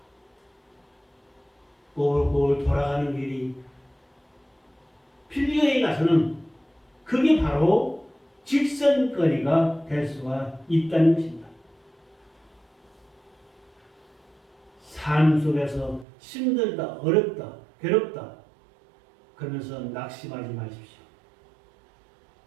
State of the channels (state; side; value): drops out; left; at 16.1 s